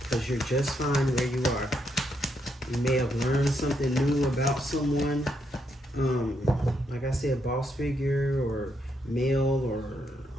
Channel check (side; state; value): both; normal; correlation 0.78